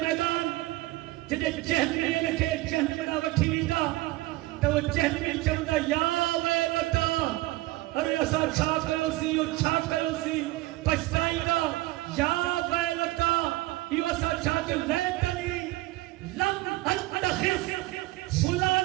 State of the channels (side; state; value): left; quieter; 19.1 dB